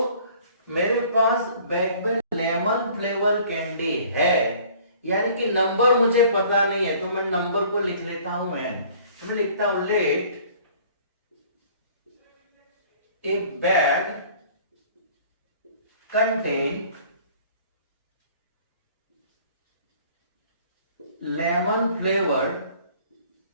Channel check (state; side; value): inverted; both; correlation -0.52